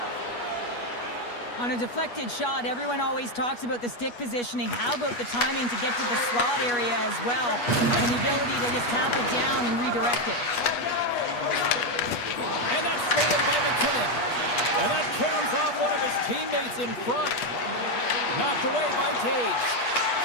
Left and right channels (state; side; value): late; right; 8.3 ms